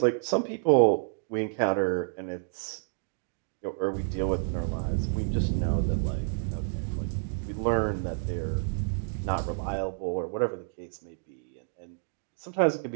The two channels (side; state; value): left; silent; digital silence